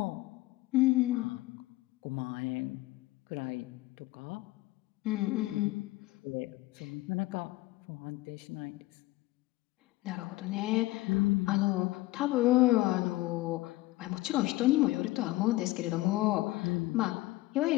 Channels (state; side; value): quieter; right; 18.9 dB